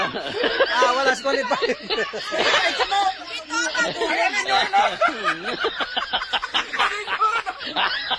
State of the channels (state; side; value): identical; both; correlation 1.00